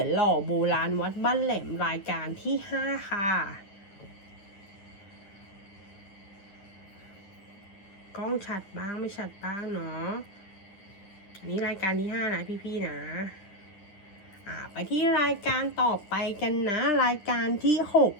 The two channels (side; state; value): right; late; 9.9 ms